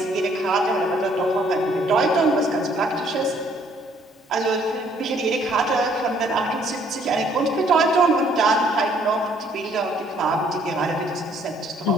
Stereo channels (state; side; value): normal; both; correlation 0.63